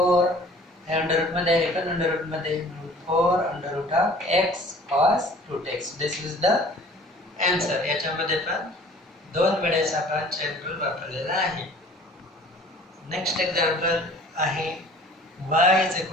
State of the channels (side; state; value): both; normal; correlation 0.49